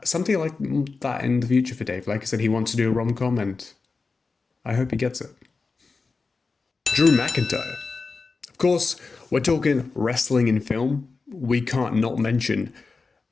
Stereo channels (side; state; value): right; quieter; 4.2 dB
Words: something like that in the future for Dave. Like I said, he wants to do a rom-com, and I hope he gets it. Drew McIntyre. Of course, we're talking wrestling in film. We can't not mention